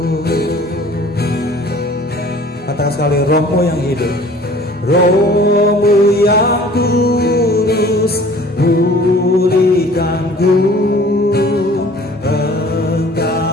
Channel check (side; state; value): both; normal; correlation 0.50